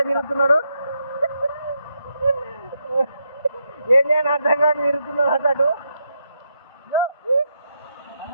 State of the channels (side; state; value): both; inverted; correlation -0.81